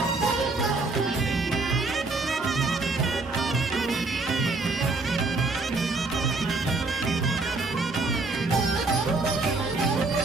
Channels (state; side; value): quieter; left; 3.5 dB